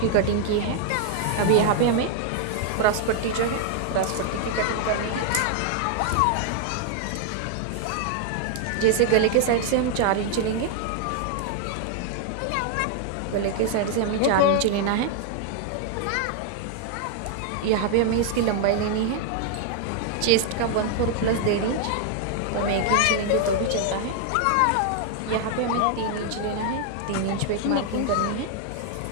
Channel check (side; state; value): both; different; correlation 0.00